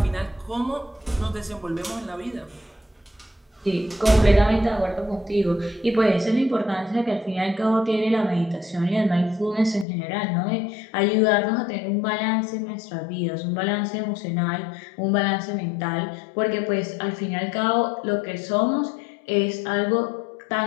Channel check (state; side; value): drops out; right; at 9.9 s